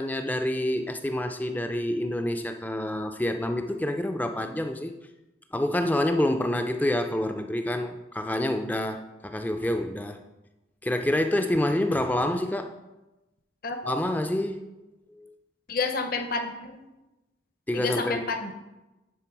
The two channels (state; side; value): normal; both; correlation 0.79